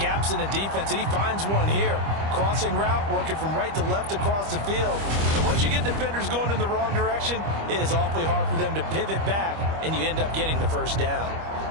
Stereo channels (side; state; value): left; late; 25 ms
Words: in the defense, and he finds one here. Crossing route, working from right to left across the field. And once you get defenders going in the wrong direction, it is awfully hard for them to pivot back, and you end up getting the first down.